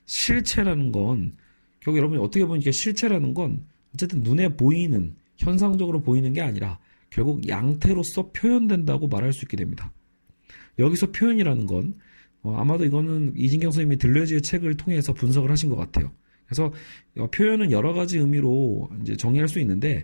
실체라는 건 결국 여러분이 어떻게 보면 이게 실체라는 건 어쨌든 눈에 보이는 현상적으로 보이는 게 아니라 결국 양태로서 표현된다고 말할 수 있게 됩니다. 여기서 표현이라는 건 아마도 이거는 이진경 선생님이 들레즈의 책을 통해서 분석을 하신 것 같아요. 그래서 표현은 여러 가지 의미로 이제 정의할 수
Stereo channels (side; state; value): both; inverted; correlation -1.00